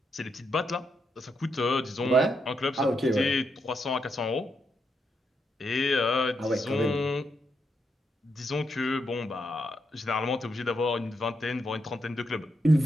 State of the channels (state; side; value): normal; both; correlation 0.81